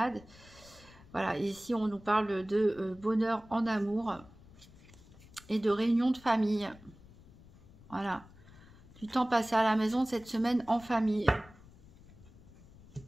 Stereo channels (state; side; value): noise; left; rumble, 22 dB below the sound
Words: Voilà, et ici on nous parle de bonheur en amour et de réunion de famille. Voilà, du temps passé à la maison cette semaine en famille.